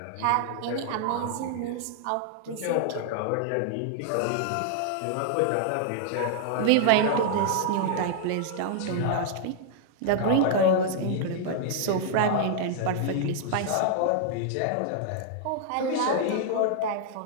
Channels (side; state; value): both; different; correlation -0.01